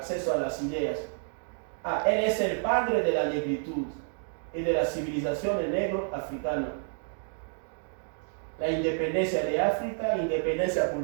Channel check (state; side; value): silent; left; 55 dB below the other